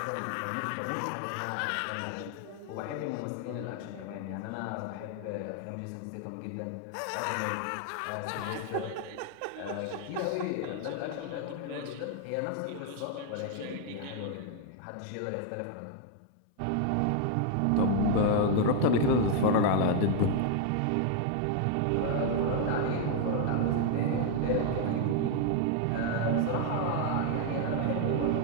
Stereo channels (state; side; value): different; both; correlation 0.00